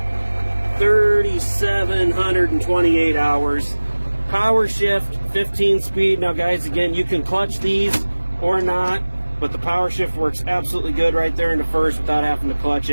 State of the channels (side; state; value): both; inverted; correlation -1.00